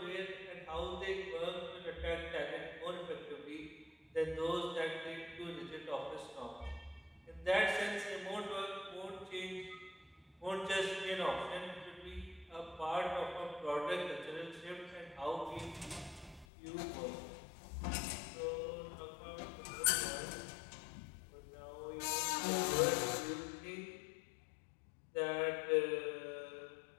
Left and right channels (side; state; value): right; drops out; at 16.4 s